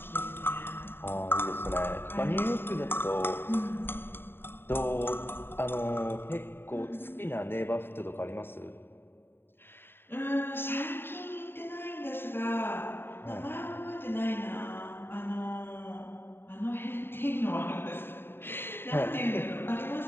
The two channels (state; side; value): late; right; 0.11 ms